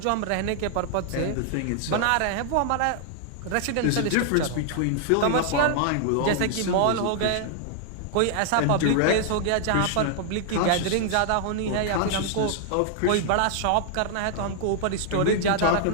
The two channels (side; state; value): both; different; correlation 0.00